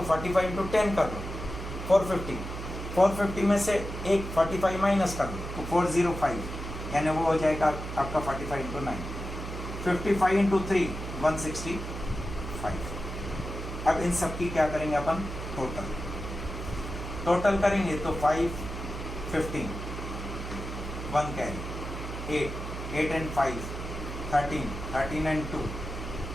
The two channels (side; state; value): right; noise; hum, 7 dB below the sound